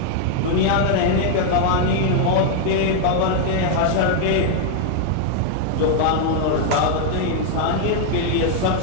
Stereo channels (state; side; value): different; both; correlation 0.00